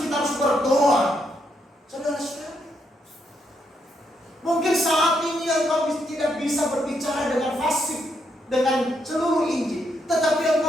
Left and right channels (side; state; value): both; normal; correlation 0.78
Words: kita harus berdoa. Saudara-saudara, mungkin saat ini engkau tidak bisa berbicara dengan fasih, dengan seluruh Injil, tetapi